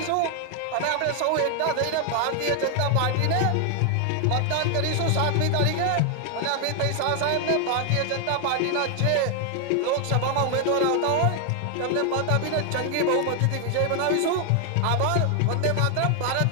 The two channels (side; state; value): both; different; correlation 0.00